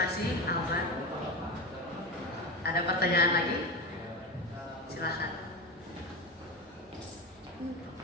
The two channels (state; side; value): normal; both; correlation 0.21